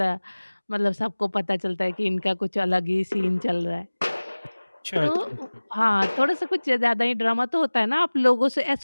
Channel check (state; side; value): inverted; both; correlation -1.00